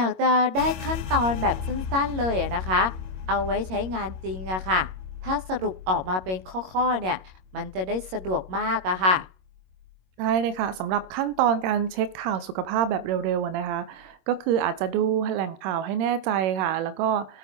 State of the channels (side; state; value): left; late; 21 ms